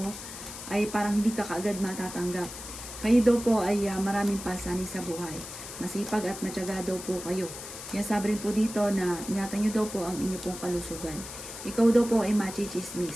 ay parang hindi ka kaagad matatanggap. Kayo daw po ay maraming pasanin sa buhay. Masipag at matyaga daw po kayo. Sinasabi rin po dito na ingatan nyo daw po ang inyong pong kalusugan. Ikaw daw po ay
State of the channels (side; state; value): left; noise; hiss, 11 dB below the sound